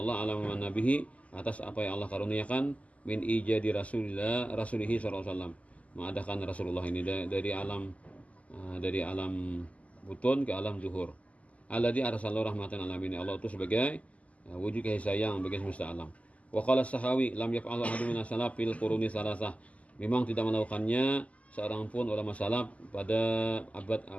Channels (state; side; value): late; right; 0.069 ms